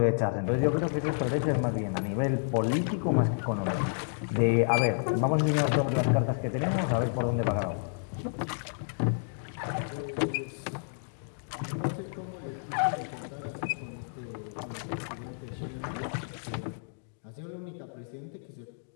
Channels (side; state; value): right; silent; digital silence